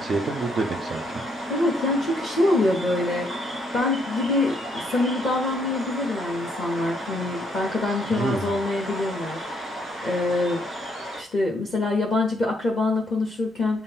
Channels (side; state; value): both; normal; correlation 0.72